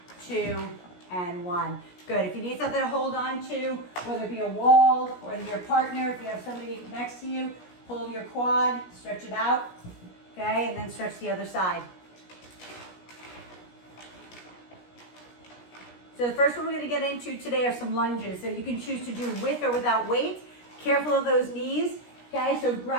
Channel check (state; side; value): late; right; 17 ms